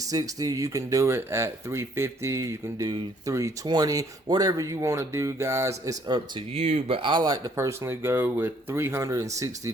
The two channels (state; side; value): normal; both; correlation 0.63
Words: You can do it at 350. You can do 320. Whatever you want to do, guys, it's up to you. But I like to personally go with 360